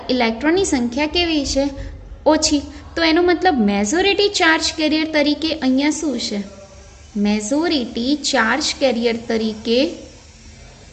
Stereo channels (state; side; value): identical; both; correlation 1.00